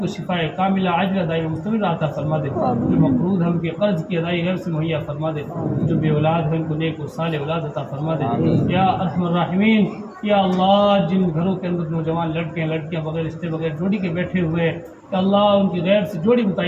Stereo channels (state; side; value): identical; both; correlation 1.00